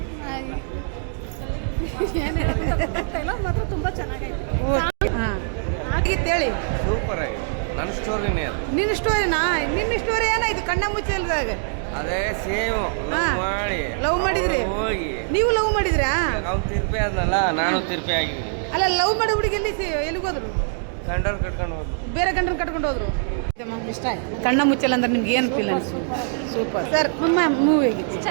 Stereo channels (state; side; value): silent; left; 63 dB below the other